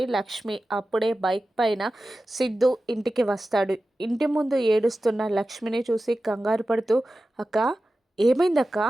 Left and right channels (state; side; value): normal; both; correlation 0.94